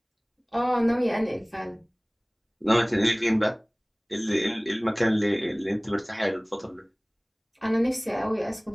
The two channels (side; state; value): both; identical; correlation 1.00